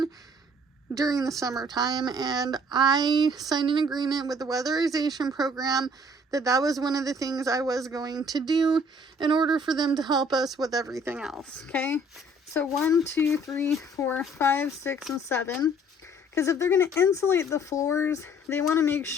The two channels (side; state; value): both; normal; correlation 0.58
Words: during the summertime, and I signed an agreement with the weatherization program that was one of the things I was going to do in order for them to help us with everything else. Okay, so 1, 2, 3, 4, 5, 6, and 7. Because if they're going to insulate the floors, they want to make